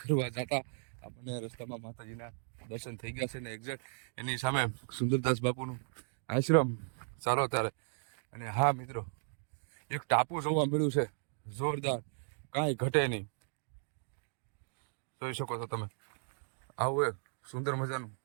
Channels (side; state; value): left; silent; digital silence